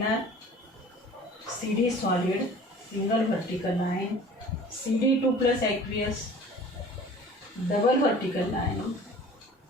CD solid single vertical line, CD2+ aqueous double vertical line,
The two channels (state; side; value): normal; both; correlation 0.45